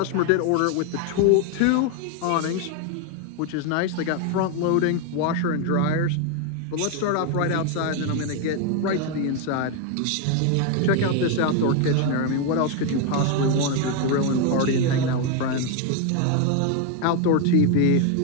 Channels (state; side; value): different; both; correlation 0.01